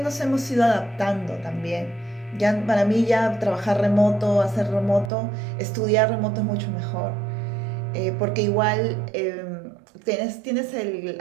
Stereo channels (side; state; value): left; drops out; at 5.1 s